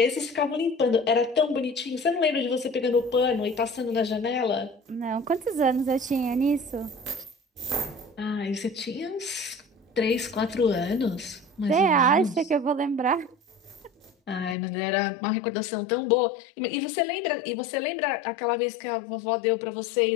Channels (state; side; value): drops out; right; at 14.6 s